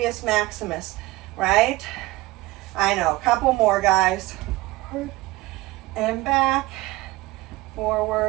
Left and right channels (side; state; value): left; quieter; 19.4 dB